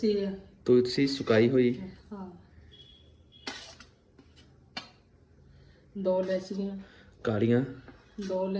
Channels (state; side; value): identical; both; correlation 1.00